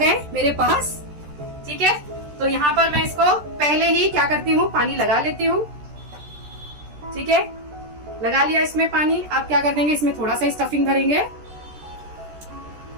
मेरे पास। ठीक है, तो यहाँ पर मैं इसको पहले ही क्या करती हूँ, पानी लगा लेती हूँ। ठीक है, लगा लिया इसमें पानी। अब क्या कर देंगे, इसमें थोड़ा सा स्टफिंग भरेंगे।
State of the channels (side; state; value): left; late; 13 ms